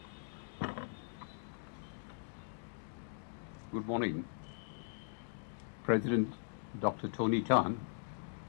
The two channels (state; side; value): silent; right; digital silence